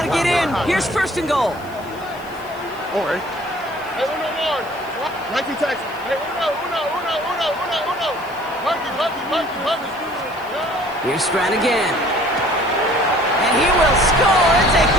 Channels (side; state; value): left; noise; hiss, 24 dB below the sound